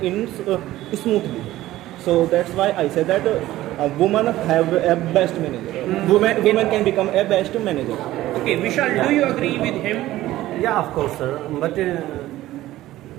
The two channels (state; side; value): quieter; left; 15.5 dB